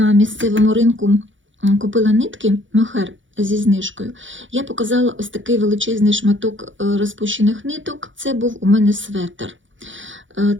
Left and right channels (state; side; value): late; left; 0.56 ms